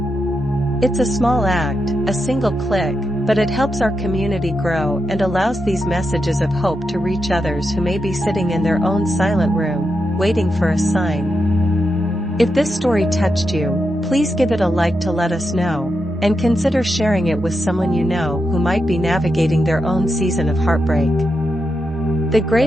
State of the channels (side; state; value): both; normal; correlation 0.86